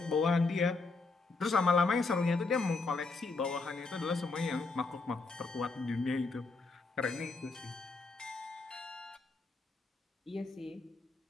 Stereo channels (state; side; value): quieter; right; 3.8 dB